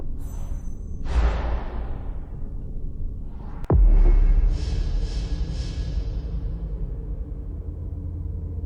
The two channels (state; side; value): identical; both; correlation 1.00